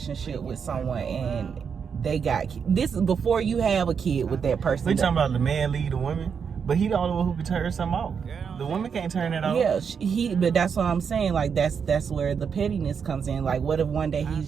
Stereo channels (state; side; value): quieter; left; 6.6 dB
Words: with someone and they got, this is before you have a kid with that person. We talking about the man lead the woman, but he the only one who can turn something off. The woman can't turn it off. Yeah, but that's what I'm saying. Like, that's where the pettiness comes in. Like, what if one day he's